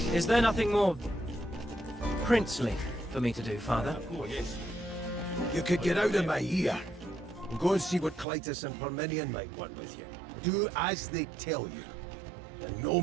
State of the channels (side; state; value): left; drops out; at 8.2 s